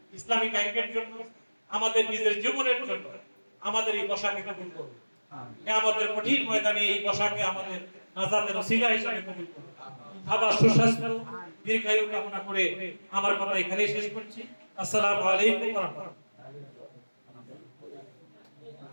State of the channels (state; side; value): inverted; both; correlation -1.00